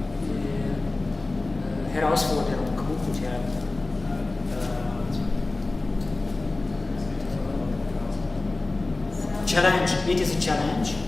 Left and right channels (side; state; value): right; quieter; 3.2 dB